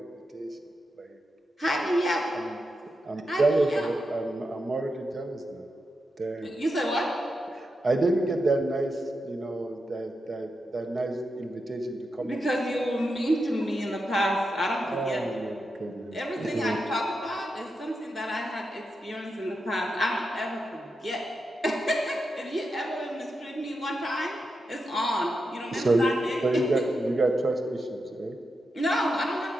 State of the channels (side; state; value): both; normal; correlation 0.87